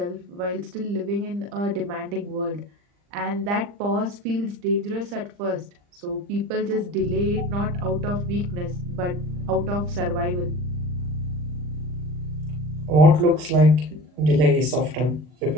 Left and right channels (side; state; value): left; late; 40 ms